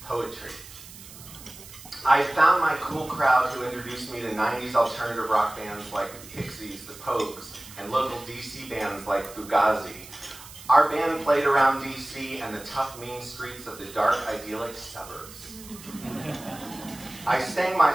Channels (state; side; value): noise; right; hiss, 17 dB below the sound